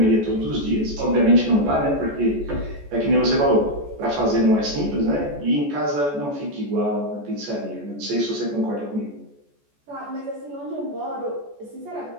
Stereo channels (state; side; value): late; left; 14 ms